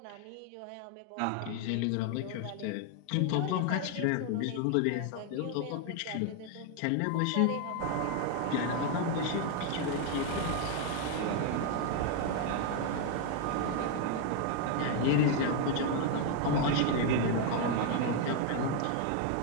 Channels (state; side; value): different; both; correlation 0.01